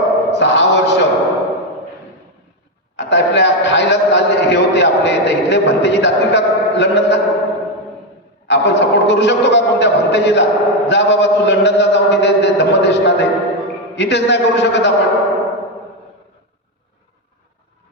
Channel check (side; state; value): both; normal; correlation 0.07